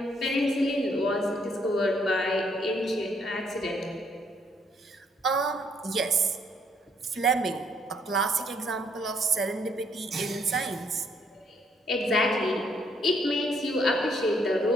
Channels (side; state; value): both; normal; correlation 0.69